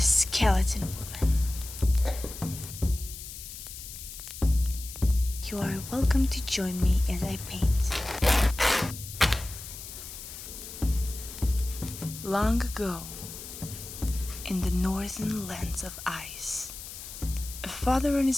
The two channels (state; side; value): noise; left; hiss, 12 dB below the sound